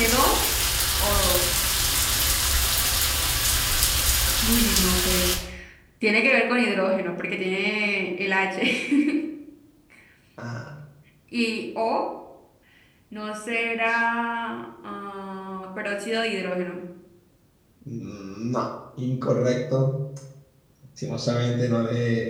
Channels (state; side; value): identical; both; correlation 1.00